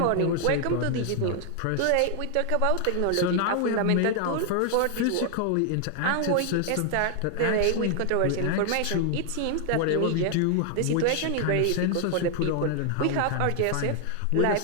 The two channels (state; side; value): different; both; correlation 0.00